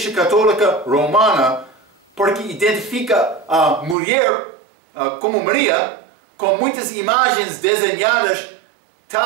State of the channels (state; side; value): drops out; left; at 4.0 s